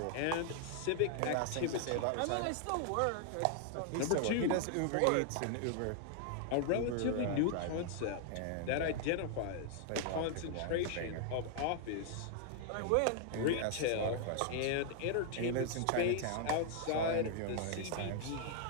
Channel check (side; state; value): both; different; correlation 0.00